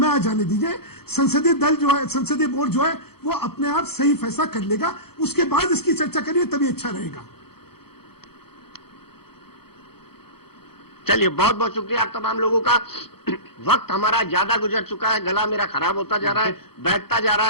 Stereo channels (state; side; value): late; right; 0.96 ms